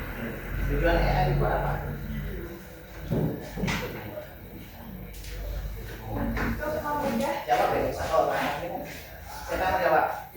Tujuan AI itu apa? Untuk memudahkan Jawab deh, satu orang. Siapa yang jawab?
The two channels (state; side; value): identical; both; correlation 1.00